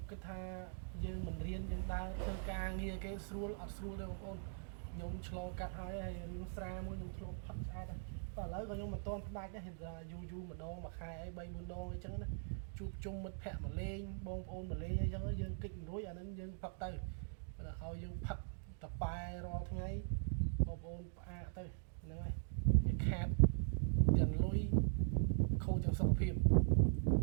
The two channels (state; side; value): silent; left; digital silence